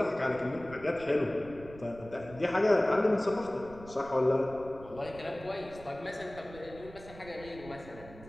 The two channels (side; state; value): right; noise; rumble, 17 dB below the sound